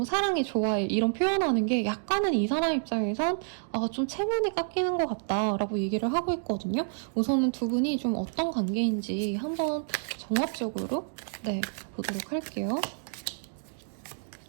사랑해, 좋아해 이런 표현하는 게 약간은 이 사람 입장에선 좀 체면이 깎이는 것 같다라고 얘기를 하고 있거든요. 우선은 두 분이 좀 어떤 관계인지 한번 종합적으로 보도록 할게요.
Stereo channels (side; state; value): left; silent; digital silence